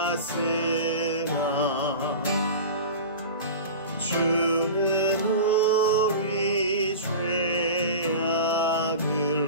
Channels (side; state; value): both; inverted; correlation -0.33